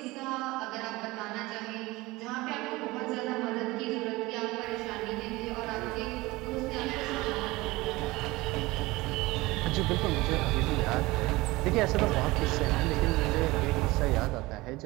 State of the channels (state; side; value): quieter; left; 20.9 dB